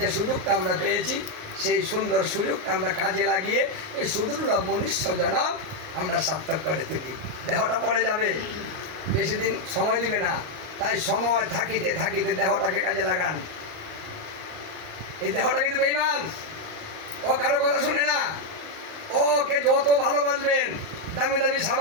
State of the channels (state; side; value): late; left; 38 ms